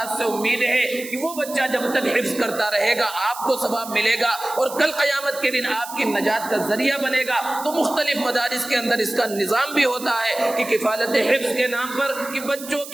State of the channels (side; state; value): right; noise; hiss, 13 dB below the sound